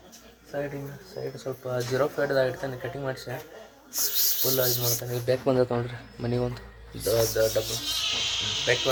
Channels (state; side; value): identical; both; correlation 1.00